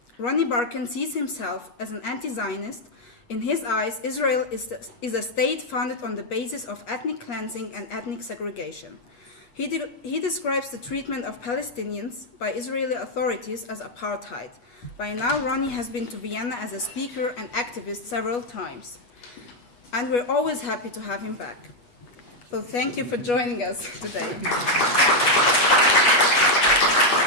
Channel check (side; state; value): right; late; 8.3 ms